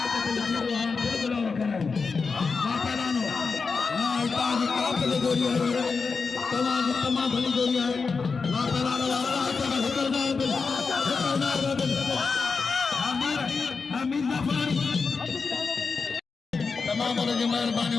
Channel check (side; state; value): right; quieter; 4.8 dB